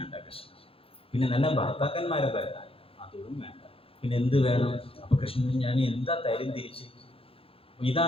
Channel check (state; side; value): late; right; 0.27 ms